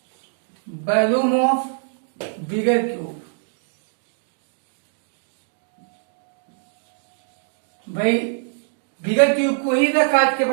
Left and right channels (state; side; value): silent; left; 63 dB below the other